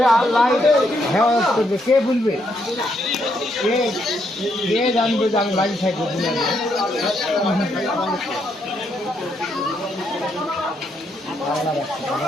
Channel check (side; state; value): both; normal; correlation 0.76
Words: আল্লাহ হেফাজত করবে, কে বলবে? কে জানবে যে আমি বাড়ি থাকবো?